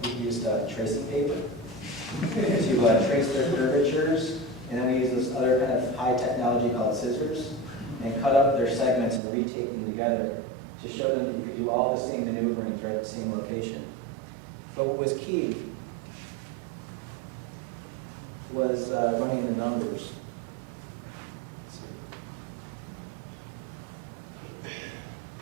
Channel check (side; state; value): left; drops out; at 9.2 s